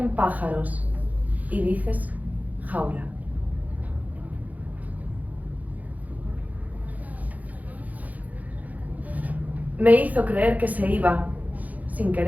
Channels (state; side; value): late; left; 0.077 ms